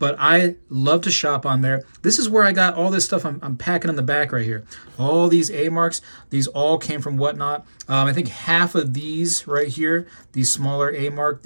I love to shop on there. This is where I got all this stuff I'm packing in the back right here. All these A-marks, these all came from Whatnot. I think half of these right here, these smaller A-mark,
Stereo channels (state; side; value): inverted; both; correlation -1.00